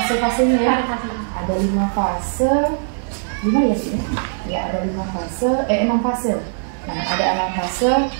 ya. Ada 5 fase. 5 ya sih? Ya, ada 5 fase, 6 fase. Nah, ada 6 fase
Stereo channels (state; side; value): silent; left; digital silence